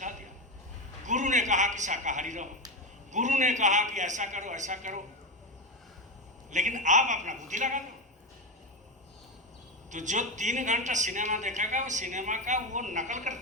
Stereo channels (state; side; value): normal; both; correlation 0.13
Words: दिया, गुरु ने कहा कि शाकाहारी रहो, गुरु ने कहा कि ऐसा करो ऐसा करो, लेकिन आप अपना बुद्धि लगा दो। तो जो 3 घंटा सिनेमा देखेगा वो सिनेमा का वो नकल